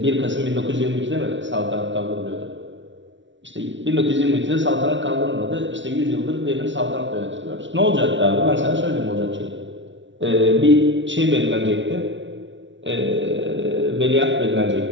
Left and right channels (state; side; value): late; left; 0.55 ms